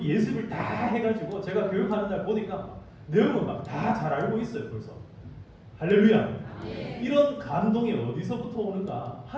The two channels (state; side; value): identical; both; correlation 1.00